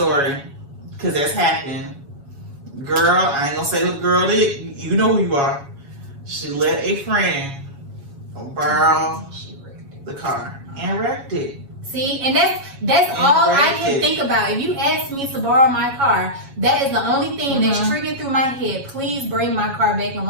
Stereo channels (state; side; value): late; left; 7.2 ms